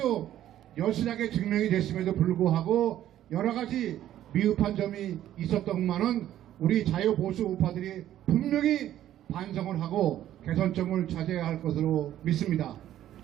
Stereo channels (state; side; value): quieter; left; 12.2 dB